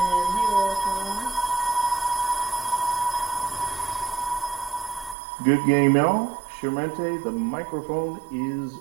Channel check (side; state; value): left; drops out; at 5.2 s